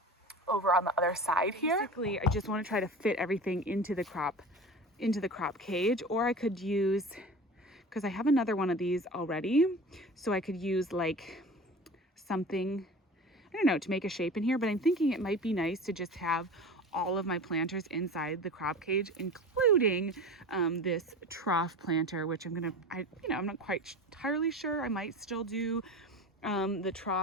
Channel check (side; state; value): both; normal; correlation 0.34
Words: over on the other side here. Basically, I just want to try to fit everything into the crop cage, or I could use, because I have another one of these already, so I could use like something, I don't know, to make a shape in here. But I'm thinking it might be nice to just have all of my planters inside the crop cage, including this trough planter, which I'm not quite entirely sure. I might still do the